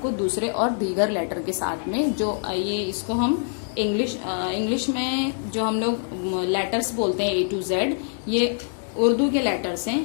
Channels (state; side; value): silent; right; digital silence